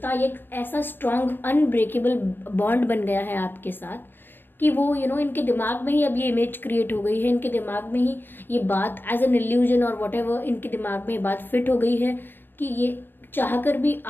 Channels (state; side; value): late; right; 0.095 ms